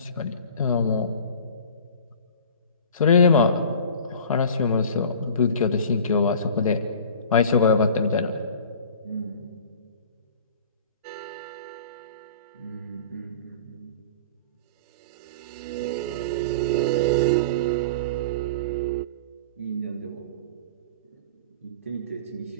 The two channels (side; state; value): both; inverted; correlation -0.40